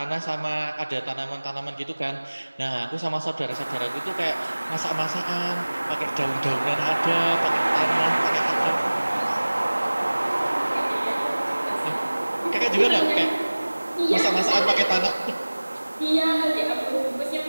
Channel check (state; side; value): inverted; both; correlation -1.00